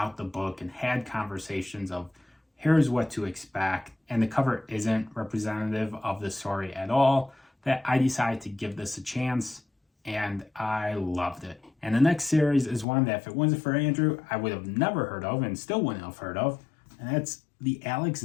the book and had conversations of here's what to expect, and the cover isn't representative of the story at all, that I decided to give this a chance, and I loved it. And the next series is one that if it wasn't for Andrew, I would have never heard of and still wouldn't have heard of, and that's the Alex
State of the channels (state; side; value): drops out; right; at 12.9 s